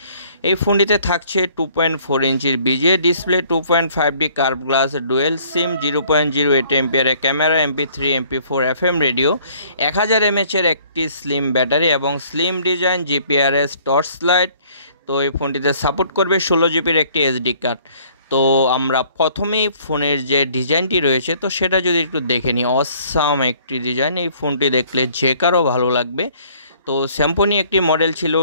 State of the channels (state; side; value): inverted; both; correlation -0.58